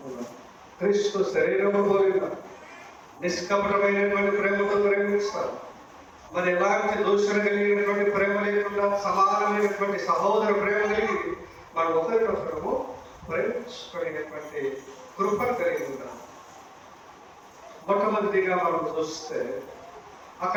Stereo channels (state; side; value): identical; both; correlation 1.00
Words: ఉన్నాం. క్రీస్తు శరీరము పోలిన నిష్కపటమైనటువంటి ప్రేమతో ప్రేమిస్తారు. మరి ఎలాంటి దూషణ కలిగినటువంటి ప్రేమ లేకుండా సమానమైనటువంటి సహోదర ప్రేమ కలిగి మనం ఒకరినొకరము ప్రేమించుకునేటువంటి కృప కలిగి ఉన్నాం. మొట్టమొదటిగా మనం చూస్తే